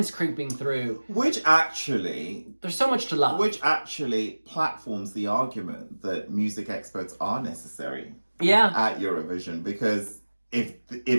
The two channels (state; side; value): inverted; both; correlation -1.00